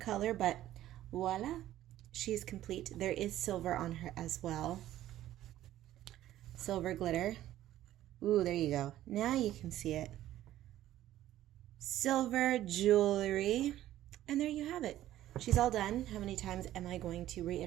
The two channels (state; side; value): quieter; left; 13.5 dB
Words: but voila, she's complete. There is silver on her as well. Silver glitter. Ooh, there you go. Now you can see it. Silver jewelry. And there you have it. She's all done. How many times am I going to